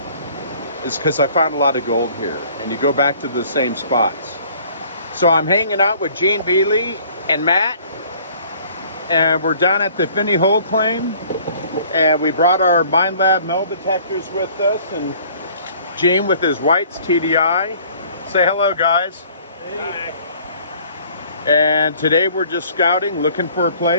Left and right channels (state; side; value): inverted; both; correlation -0.54